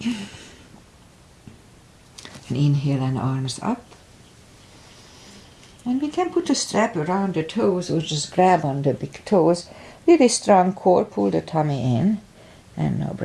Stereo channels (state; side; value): identical; both; correlation 1.00